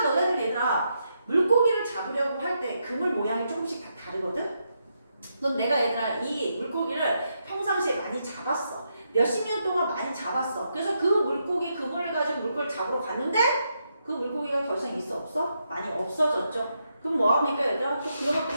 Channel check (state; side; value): inverted; both; correlation -0.81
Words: 너네들 얘들아 물고기를 잡으려고 할 때 그물 모양이 조금씩 다 다르거든. 넌 내가 얘들아 이 물고기를 평상시에 많이 잡았어. 몇십 년 동안 많이 잡았어. 그래서 그 물고기 그물을 가지고 물고기를 잡으러 갔는데 그 물고기가 더 이상 있어 없어? 많이 없어졌죠. 그럼 뭐합니까 얘들아? 또 그런